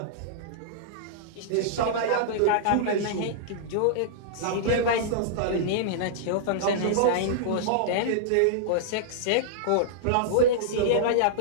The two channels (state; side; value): different; both; correlation -0.02